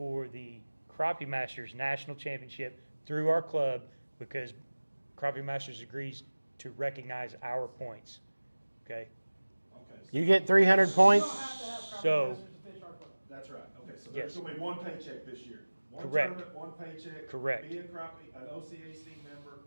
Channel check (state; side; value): inverted; both; correlation -1.00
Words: the Crappie Masters National Championship through our club because Crappie Masters agrees to recognize our points. Okay? Okay, You get 300 points. So, that's right. Okay, so Yes. there's gonna be one paycheck this year. One Correct. tournament, one paycheck. Correct. Be a Crappie, an OCAC member.